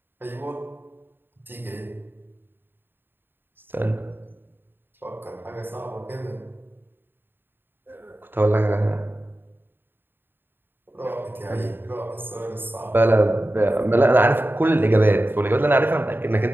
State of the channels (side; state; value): left; late; 0.098 ms